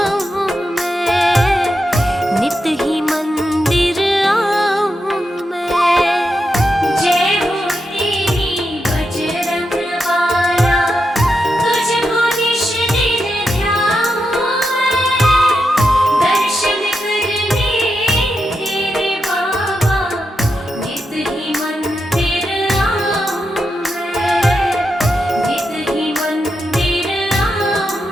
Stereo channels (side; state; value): both; normal; correlation 0.86